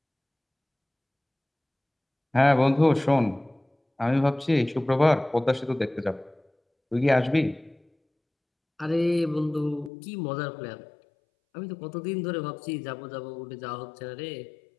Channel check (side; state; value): right; drops out; at 9.9 s